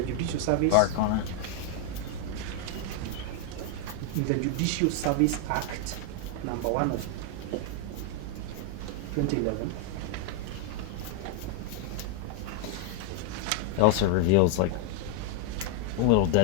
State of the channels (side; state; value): both; different; correlation 0.00